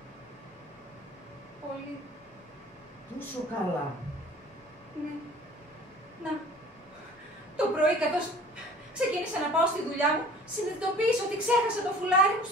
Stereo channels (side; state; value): both; normal; correlation 0.47